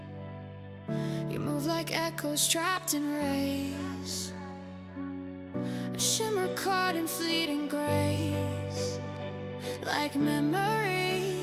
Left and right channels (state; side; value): identical; both; correlation 1.00